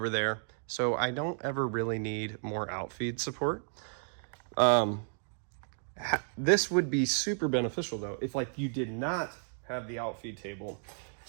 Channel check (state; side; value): silent; left; digital silence